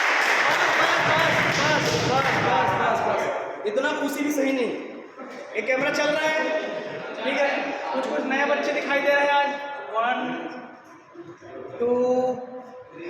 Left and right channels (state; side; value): identical; both; correlation 1.00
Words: बस इतना खुशी भी सही नहीं। एक कैमरा चल रहा है, ठीक है, कुछ कुछ नए बच्चे दिखाई दे रहे हैं आज। 1 2